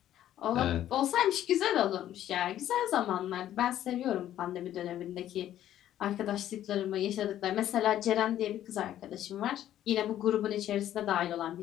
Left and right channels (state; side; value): quieter; right; 12.0 dB